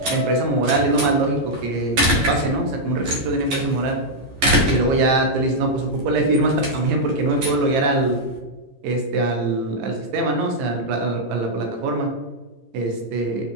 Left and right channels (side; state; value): left; late; 11 ms